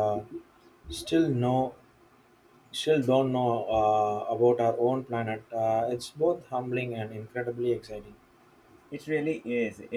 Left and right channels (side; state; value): both; identical; correlation 1.00